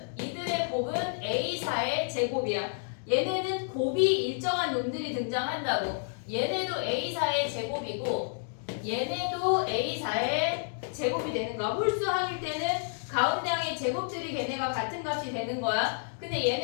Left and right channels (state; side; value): silent; right; digital silence